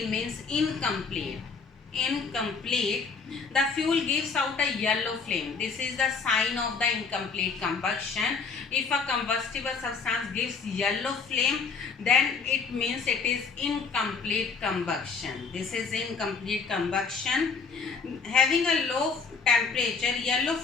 incomplete. The fuel gives out a yellow flame. This is the sign of the incomplete combustion. If a combustible substance gives yellow flame, then it means it is incomplete combustion. This is incomplete combustion. Having a low temperature, yellow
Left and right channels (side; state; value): right; quieter; 5.2 dB